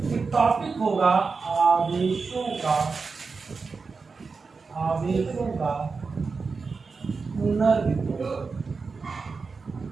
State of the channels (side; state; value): left; quieter; 4.6 dB